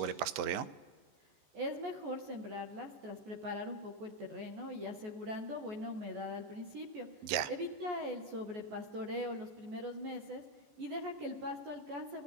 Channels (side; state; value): left; late; 14 ms